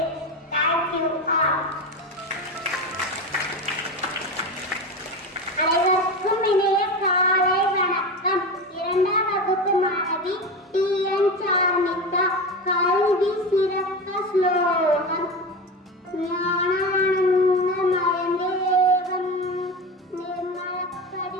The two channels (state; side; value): normal; both; correlation 0.23